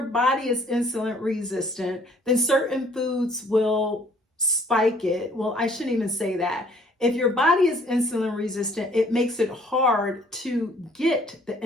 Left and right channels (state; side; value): normal; both; correlation 0.59